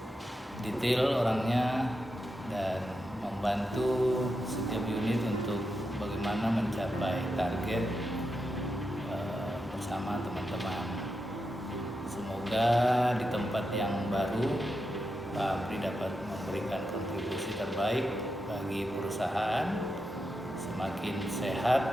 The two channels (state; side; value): normal; both; correlation 0.87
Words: detail orangnya, dan membantu setiap unit untuk bagaimana mencapai target bersama teman-teman. Semoga di tempat yang baru Pak Amri dapat memberikan kontribusi terbaik bagi perusahaan, semakin